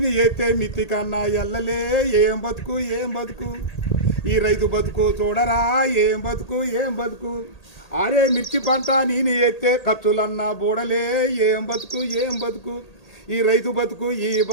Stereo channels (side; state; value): right; late; 1.8 ms